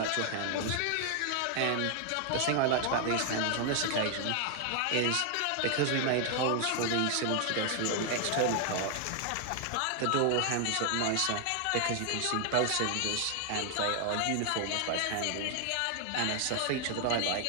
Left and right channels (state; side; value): different; both; correlation 0.00